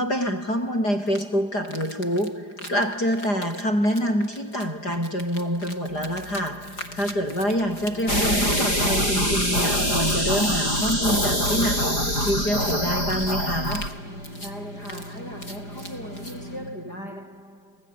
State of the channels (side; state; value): right; late; 4.9 ms